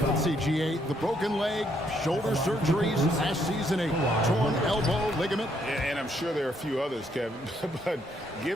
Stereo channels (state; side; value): normal; both; correlation 0.72